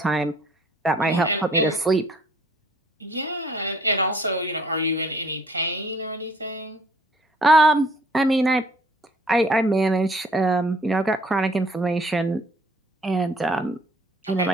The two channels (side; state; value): both; normal; correlation 0.58